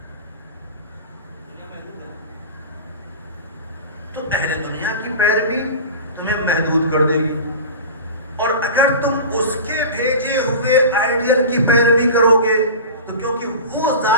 تو اہل دنیا کی پیروی تمہیں محدود کر دے گی، اور اگر تم اس کے بھیجے ہوئے آئیڈیل کی پیروی کرو گے تو کیونکہ وہ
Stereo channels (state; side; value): inverted; both; correlation -0.32